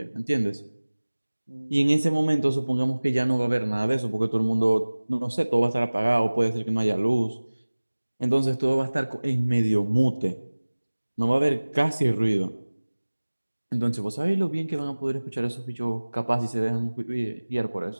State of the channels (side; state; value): both; inverted; correlation -1.00